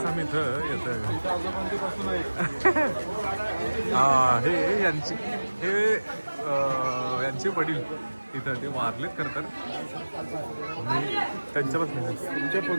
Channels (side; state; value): both; inverted; correlation -1.00